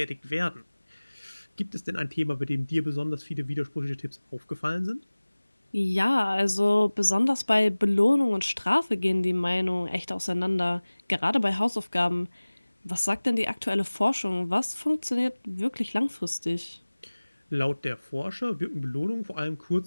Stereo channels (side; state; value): both; inverted; correlation -1.00